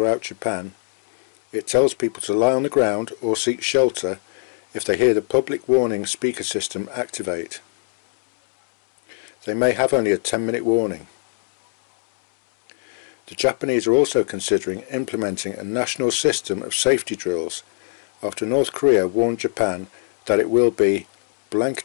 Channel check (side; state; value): right; silent; 65 dB below the other